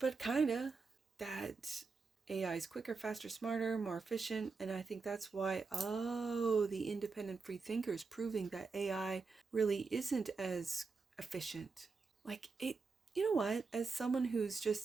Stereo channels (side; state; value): left; quieter; 4.5 dB